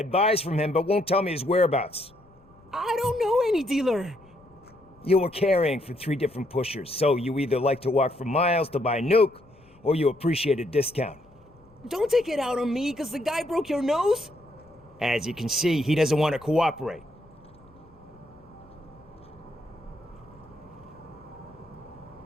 buys from him but won't tell me his whereabouts. I don't know any dealer. You were carrying for 3 different pushers, so you either like to walk for miles to buy nuke, or you appreciate a discount. Don't take it out on me, because the guy broke your nose? As you can see, he doesn't want to cooperate.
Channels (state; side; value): noise; left; rumble, 28 dB below the sound